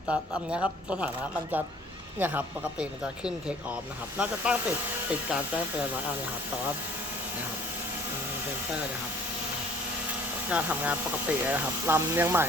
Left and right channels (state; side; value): normal; both; correlation 0.54